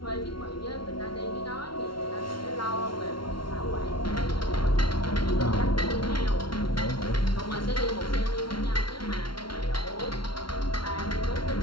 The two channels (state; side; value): late; right; 0.73 ms